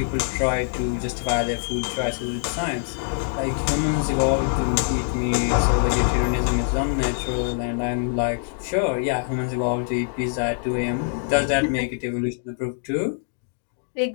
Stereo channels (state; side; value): silent; right; 63 dB below the other